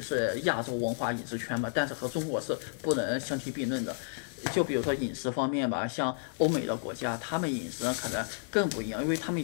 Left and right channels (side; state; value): right; silent; digital silence